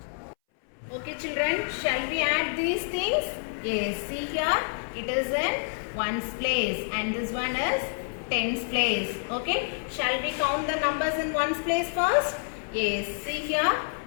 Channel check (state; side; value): silent; right; 59 dB below the other